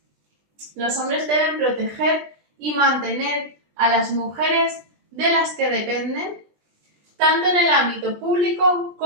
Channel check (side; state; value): left; late; 20 ms